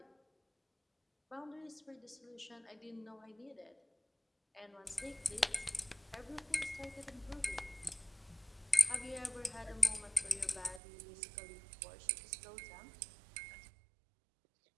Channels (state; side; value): drops out; left; at 10.8 s